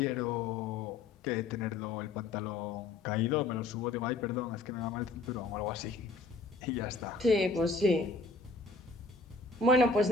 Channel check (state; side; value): quieter; right; 3.6 dB